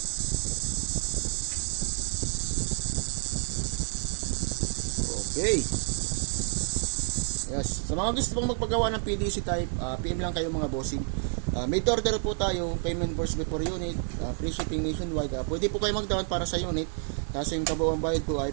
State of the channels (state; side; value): silent; left; 59 dB below the other